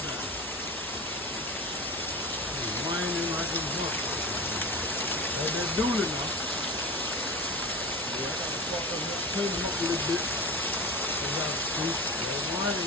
down. It's whining like a book. That's that dully now. Yeah, I gotta fuck them up, clean them up a little bit. They got to see. They're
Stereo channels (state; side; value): normal; both; correlation 0.29